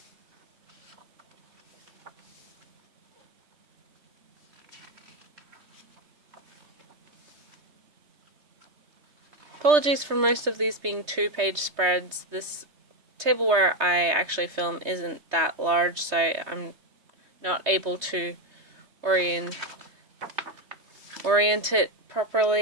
Apologies for most of these being 2-page spreads. This table where I actually film isn't that large, so I'm not able to orient it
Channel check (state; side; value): late; left; 3.2 ms